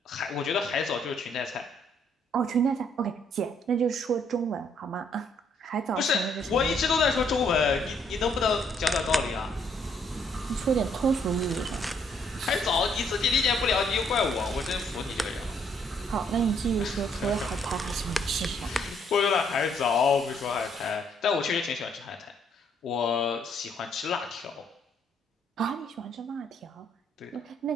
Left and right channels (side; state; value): both; normal; correlation 0.69